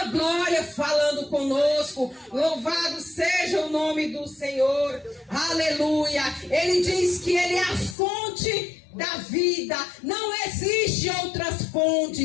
glória falando conosco. Louvado seja o nome do Senhor. Aleluia. Ele diz que Ele é a fonte da vida. Não existe outras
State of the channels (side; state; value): right; drops out; at 8.0 s